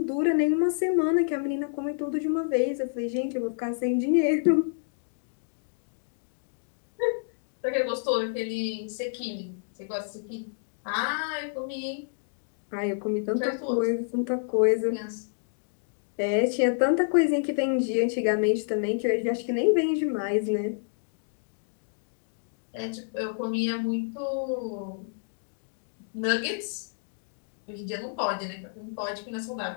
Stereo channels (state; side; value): silent; right; digital silence